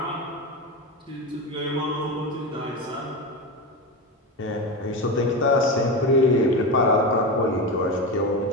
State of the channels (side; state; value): both; normal; correlation 0.19